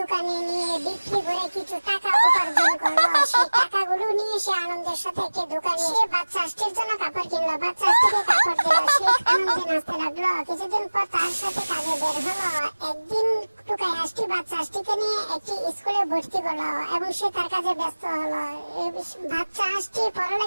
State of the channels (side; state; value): both; inverted; correlation -1.00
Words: নিয়ে বিক্রি করে কিছু টাকা উপার্জন করলো। সেই টাকাগুলো নিয়ে সে আনন্দের সাথে একটি দোকানে সে বাচ্চা হাঁসটির জন্য কাপড় কিনলো। বাচ্চা হাঁসটিকে কাপড় দিল। সে আনন্দে নাচতে লাগলো। কিছুদিন পর তার সাথে কাজে বের হলো। একদিন টুকাই হাঁসটি বাচ্চা হাঁসটিকে নিয়ে একটি স্কুলে ভর্তি করলো এবং সে তার কাজে ব্যস্ত হলো। বাচ্চা হাঁসটি